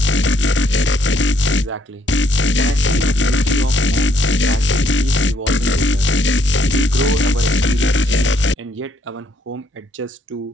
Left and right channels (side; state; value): both; normal; correlation 0.69